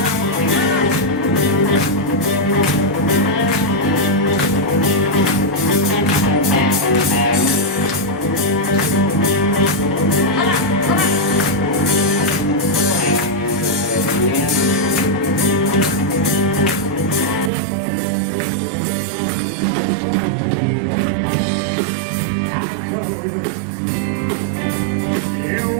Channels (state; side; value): drops out; left; at 17.5 s